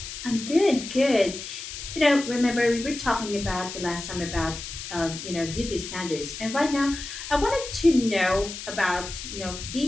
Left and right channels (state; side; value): noise; left; hiss, 9 dB below the sound